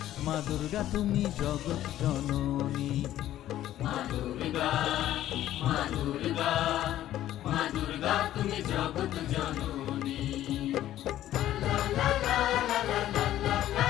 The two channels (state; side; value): quieter; right; 13.0 dB